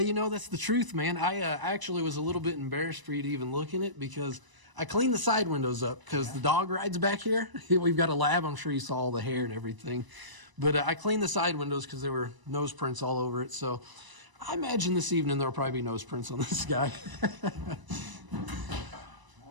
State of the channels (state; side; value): late; left; 1.0 ms